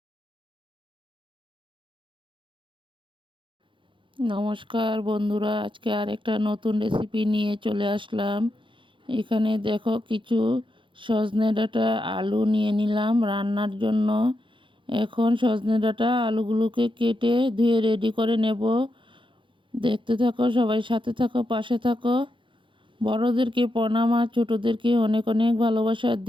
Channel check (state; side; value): late; left; 0.24 ms